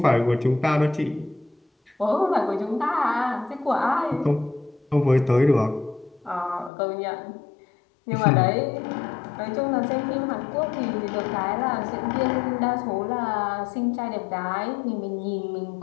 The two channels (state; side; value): drops out; right; at 6.7 s